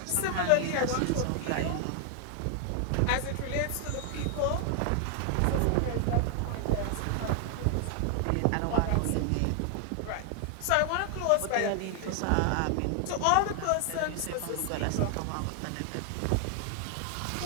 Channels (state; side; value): different; both; correlation 0.00